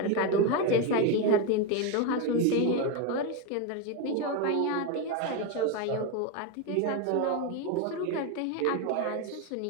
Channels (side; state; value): both; different; correlation 0.03